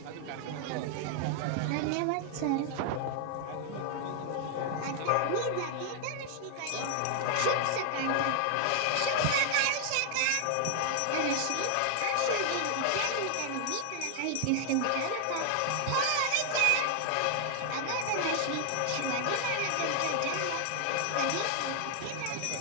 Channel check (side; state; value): both; different; correlation 0.00